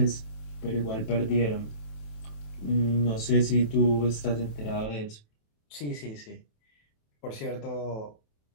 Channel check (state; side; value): late; right; 27 ms